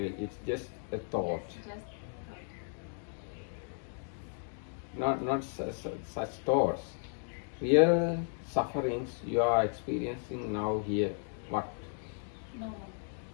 just a thought. Yes, just Not such thoughts. Real sufferings you are experiencing now here. What? no.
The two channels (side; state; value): right; silent; 55 dB below the other